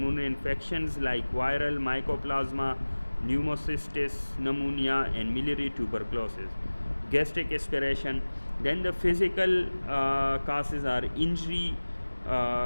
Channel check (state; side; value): inverted; both; correlation -1.00